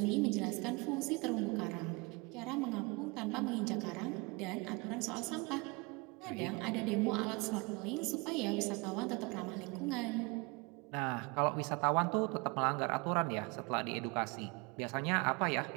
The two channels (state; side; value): quieter; left; 28.1 dB